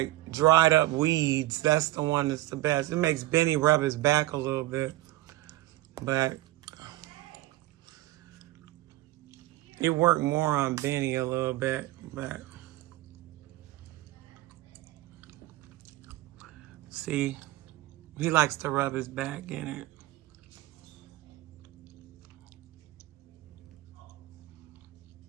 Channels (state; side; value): quieter; left; 16.9 dB